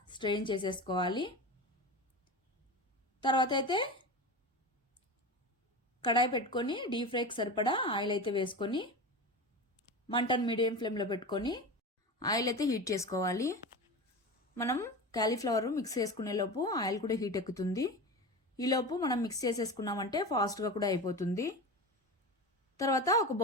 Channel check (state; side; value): normal; both; correlation 0.27